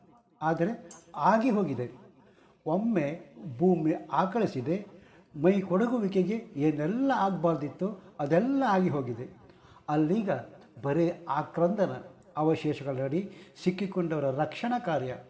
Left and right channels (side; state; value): both; identical; correlation 1.00